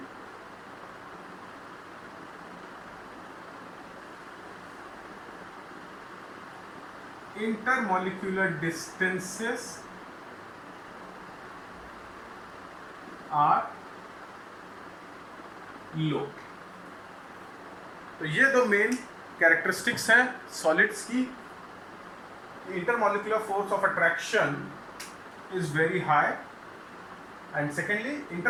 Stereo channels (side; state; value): both; identical; correlation 1.00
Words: intermolecular distances are low। तो ये दो मेन कैरेक्टरिस्टिक्स हैं सॉलिड्स की। Intermolecular force of attraction is very high, and secondly